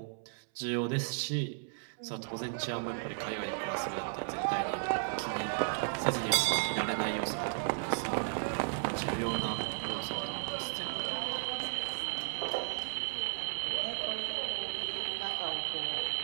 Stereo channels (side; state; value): left; silent; 55 dB below the other